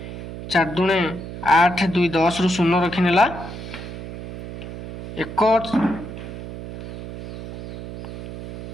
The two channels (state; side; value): noise; right; hum, 10 dB below the sound